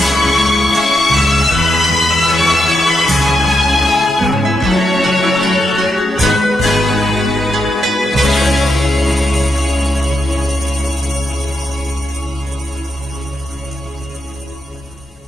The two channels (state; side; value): normal; both; correlation 0.83